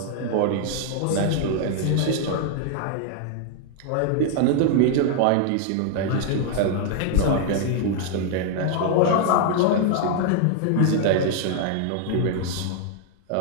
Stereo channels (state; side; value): different; both; correlation 0.00